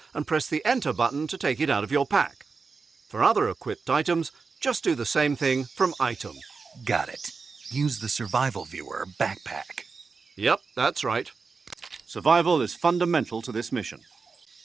and press the Enter button to take it out of your pack. For other equipped items, just do the same thing from Item. Got it. Use the survival viewer backpack. Yep, that's right. Survival is fundamental to this mission.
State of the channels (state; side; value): quieter; left; 4.8 dB